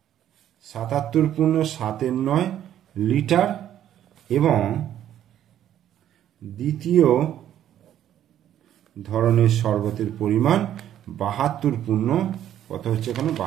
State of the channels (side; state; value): left; quieter; 11.2 dB